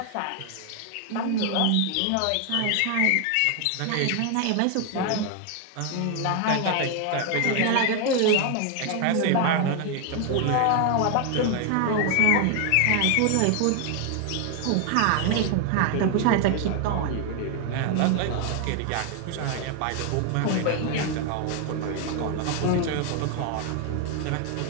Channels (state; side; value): different; both; correlation 0.00